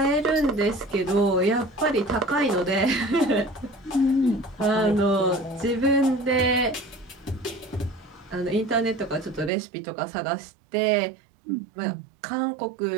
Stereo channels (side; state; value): left; drops out; at 9.5 s